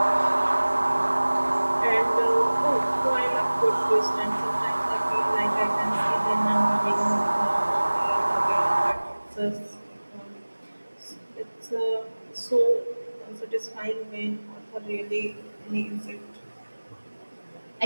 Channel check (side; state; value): both; inverted; correlation -1.00